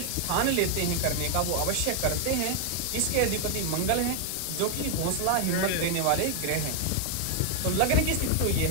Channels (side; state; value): both; different; correlation 0.00